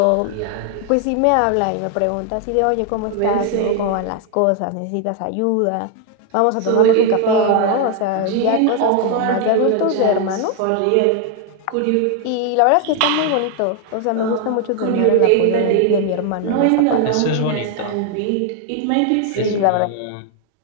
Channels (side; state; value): both; different; correlation 0.01